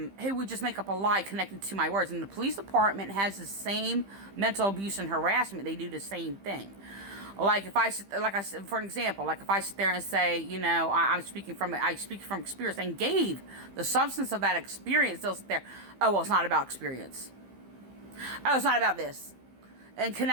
He would just make up a lie connected to my words. And the police department has the same mental abuse and harassment. They do the same thing. Like if I said, for an example, like if I sit there and say, you know, I speak from experience and gave the substance of that experience, they'll sit there, oh, well, it's not about experience. Oh, it's not about this. And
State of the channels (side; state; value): left; late; 15 ms